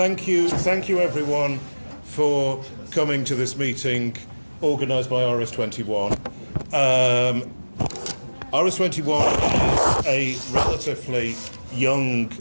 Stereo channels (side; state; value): both; inverted; correlation -1.00